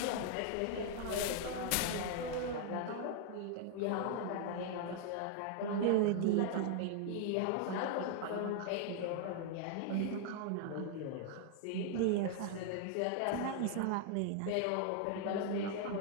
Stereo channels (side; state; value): both; different; correlation 0.00